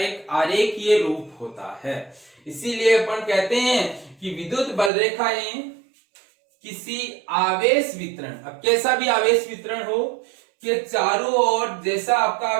आरेखीय रूप होता है। इसीलिए अपन कहते हैं कि विद्युत बल रेखाएं किसी आवेश वितरण, अब कैसा भी आवेश वितरण हो, कि चारों ओर जैसा आपका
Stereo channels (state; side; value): drops out; left; at 4.9 s